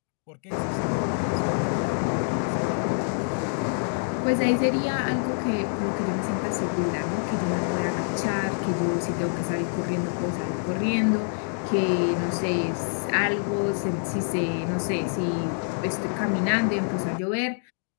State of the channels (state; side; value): silent; right; digital silence